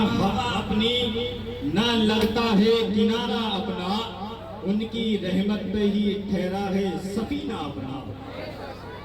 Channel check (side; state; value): both; identical; correlation 1.00